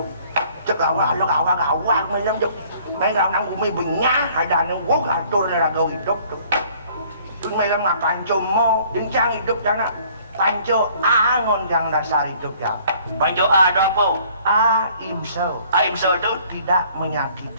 Chắc gawa, may lam dok. May lam nang bumibunya, ada nang wok, atur na ragaw hidok dok. Doon may lam nga pancho mo, din siyang hidok dyan na. Pancho angon kang dasar hidup ya. Pancho ano po? Ahimsa. Ahimsa doon? Tidak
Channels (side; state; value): both; inverted; correlation -0.57